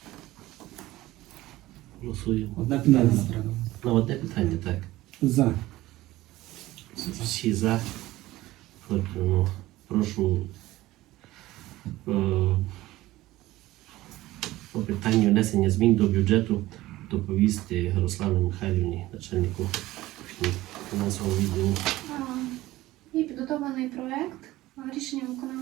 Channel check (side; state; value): left; quieter; 17.1 dB